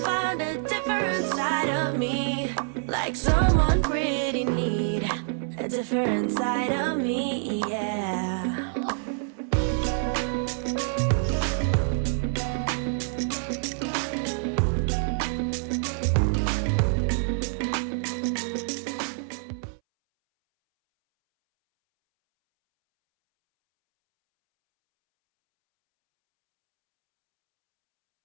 find a different side of me, like someone pretty neat, a different side of me, yeah.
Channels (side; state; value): left; silent; 60 dB below the other